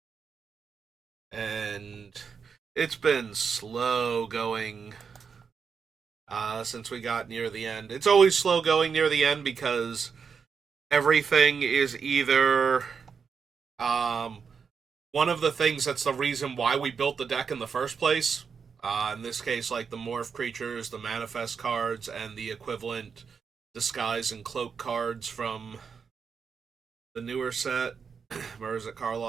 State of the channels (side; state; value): left; quieter; 6.1 dB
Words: And it's been slow going since we got near the end. It's always slow going near the end because everything is either one of the things that's the reason why we built the deck in the first place. In this case, like the morph creatures, the manifest cards, and the equivalent disguise and cloak cards from the newer set, Murs at